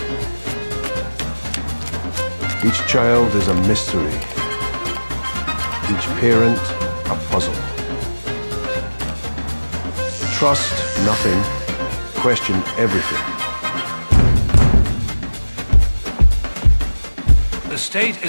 Each child is a mystery. Each parent a puzzle. Trust nothing, question everything. The state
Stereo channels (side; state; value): both; inverted; correlation -1.00